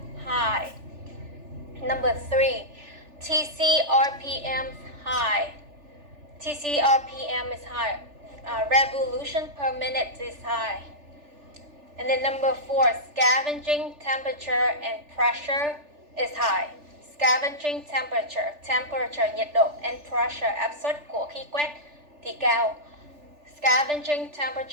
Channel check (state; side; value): late; left; 3.4 ms